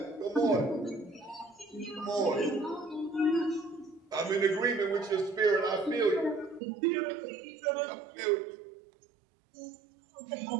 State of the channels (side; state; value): left; drops out; at 6.6 s